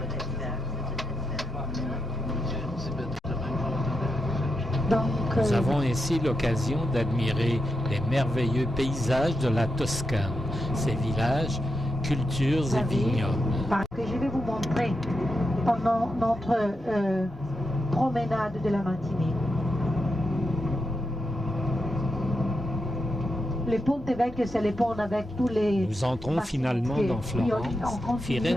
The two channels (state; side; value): normal; both; correlation 0.85